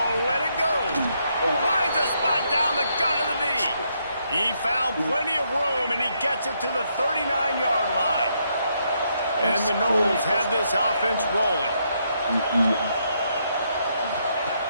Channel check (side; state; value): both; inverted; correlation -0.76